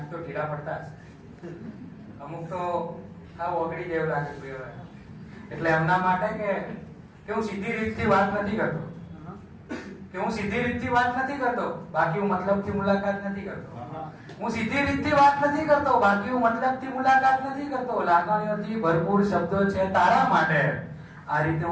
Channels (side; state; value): both; identical; correlation 1.00